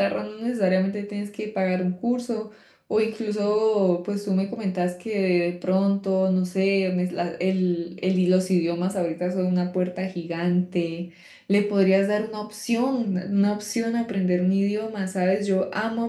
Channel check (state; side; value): identical; both; correlation 1.00